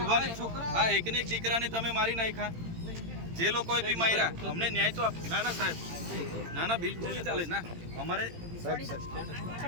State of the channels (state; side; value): late; left; 18 ms